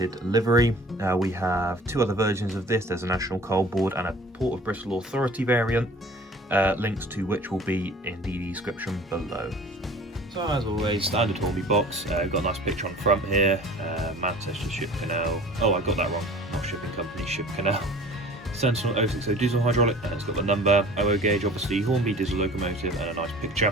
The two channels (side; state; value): both; normal; correlation 0.45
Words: livery. We have two other versions of this. There's a National Coal Board and a Port of Bristol Authority variant, links to which will be in the description below. So as always, standard Hornby box. We've got a nice picture on front here, Manchester Ship Canal. Oh, I got that wrong, not Shipping Company, Ship Canal. Sentinel 060 diesel hydraulic, and it's got the number, OO gauge, obviously Hornby diesel locomotive, and a nice